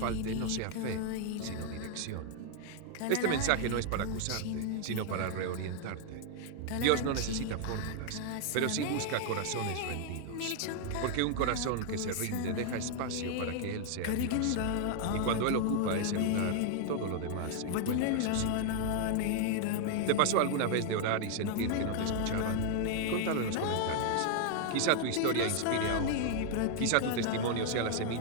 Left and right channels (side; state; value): both; different; correlation 0.00